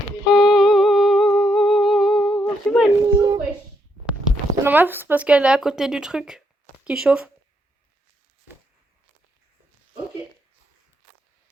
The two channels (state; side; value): normal; both; correlation 0.76